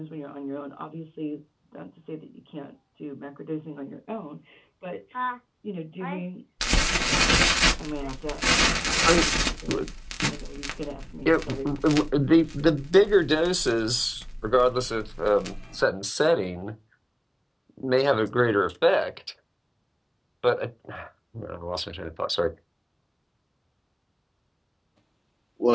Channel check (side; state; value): both; identical; correlation 1.00